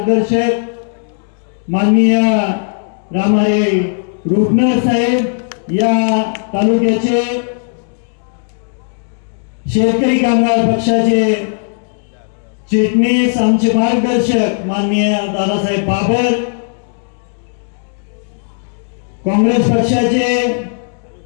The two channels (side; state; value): right; silent; 69 dB below the other